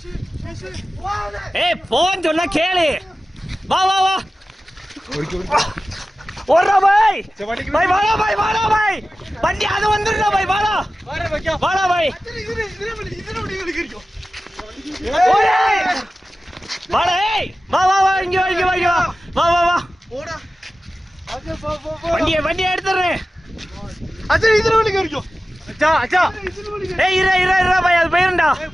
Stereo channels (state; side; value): normal; both; correlation 0.95